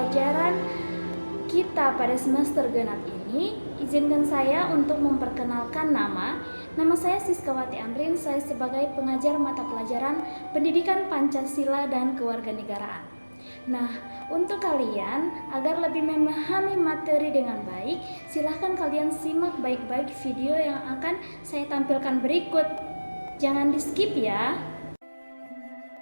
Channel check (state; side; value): inverted; both; correlation -1.00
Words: kita pada semester genap ini, izinkan saya untuk memperkenalkan nama. Nama saya Siskawati Amrin, saya sebagai pengajar mata pelajaran Pendidikan Pancasila dan Kewarganegaraan. Nah, untuk kalian agar lebih memahami materi dengan baik, silahkan kalian simak baik-baik video yang akan saya tampilkan berikut. Jangan di skip ya.